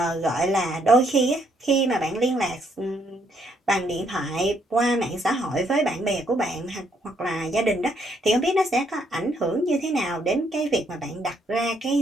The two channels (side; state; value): both; normal; correlation 0.71